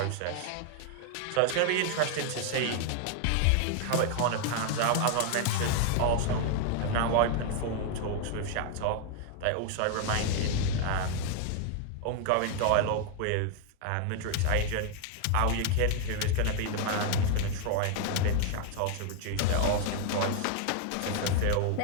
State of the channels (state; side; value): different; both; correlation 0.00